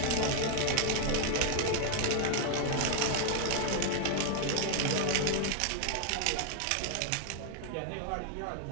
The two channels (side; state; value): both; different; correlation 0.00